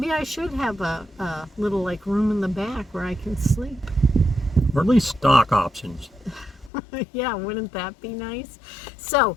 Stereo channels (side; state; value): right; drops out; at 6.7 s